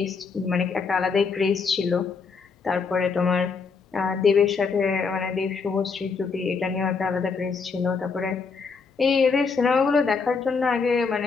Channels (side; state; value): right; quieter; 5.1 dB